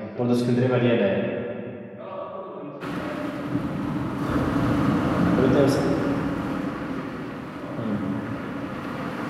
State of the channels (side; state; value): both; identical; correlation 1.00